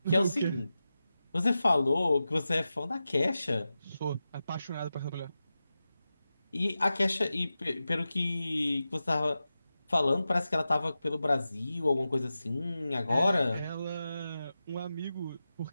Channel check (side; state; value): both; inverted; correlation -0.93